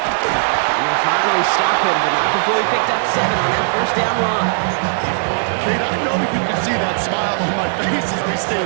And they finally stop him, but not before he picked up 7 on that first down run. Kate, I know you can see that smile on my face as we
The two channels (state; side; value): silent; left; digital silence